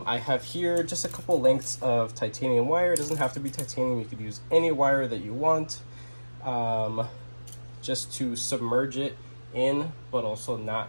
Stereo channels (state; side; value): inverted; both; correlation -1.00